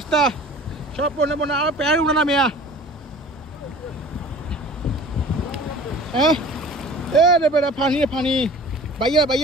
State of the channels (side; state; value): both; normal; correlation 0.44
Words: সব বন্যা বন্যা, আর প্যার উঠে না মেয়া। হ্যাঁ এ রে বেড়া পানি পানি